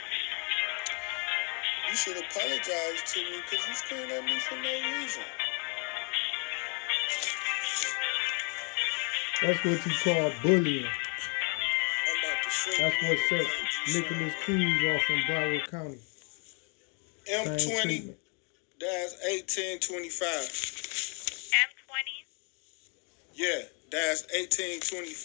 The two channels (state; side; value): quieter; right; 36.0 dB